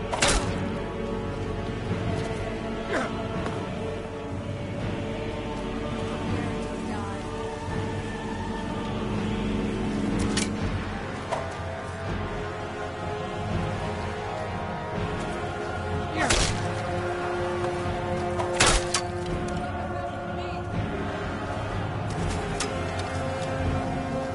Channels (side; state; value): both; identical; correlation 1.00